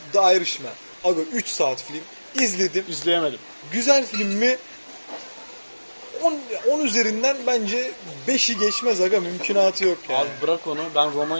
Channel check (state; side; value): inverted; both; correlation -1.00